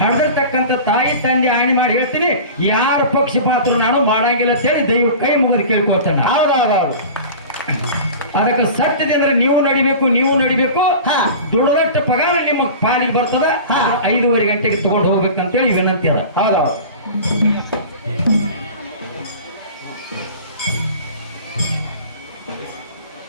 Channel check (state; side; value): inverted; both; correlation -0.36